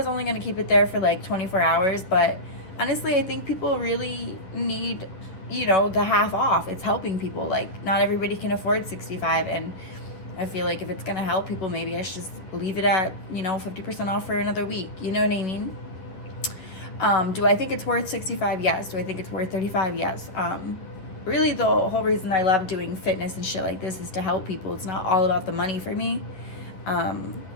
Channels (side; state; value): right; late; 10 ms